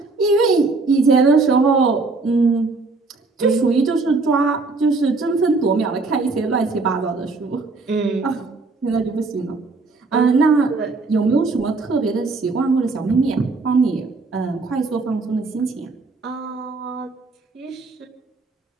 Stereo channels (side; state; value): left; quieter; 3.8 dB